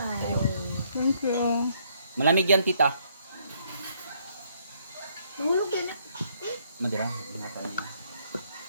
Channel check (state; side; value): inverted; both; correlation -0.69